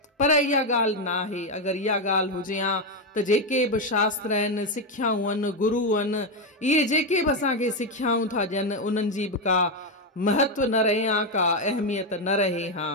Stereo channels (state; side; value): normal; both; correlation 0.06